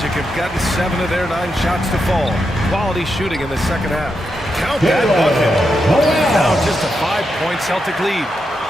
have gotten 7 of their 9 shots to fall. Quality shooting in the second half. Count that bucket. Now just a 5-point Celtic lead.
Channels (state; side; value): normal; both; correlation 0.85